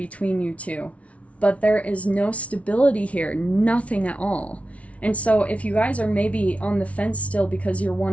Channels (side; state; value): right; late; 0.065 ms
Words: you two, but there is no stability here, nothing at all. And so if you guys are maybe on the fence still because you're